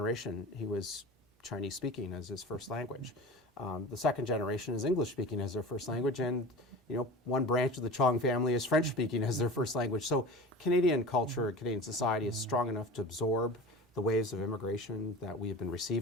He was Chinese speaking as his first language. The second generation is English speaking as their first language, and one branch of the Chong family is French speaking as their first language. So Canadian culture, Canadian society is strong enough to absorb the waves of immigration that we have been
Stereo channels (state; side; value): normal; both; correlation 0.35